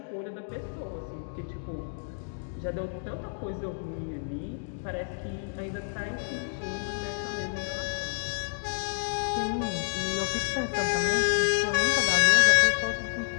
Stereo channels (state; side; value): silent; right; digital silence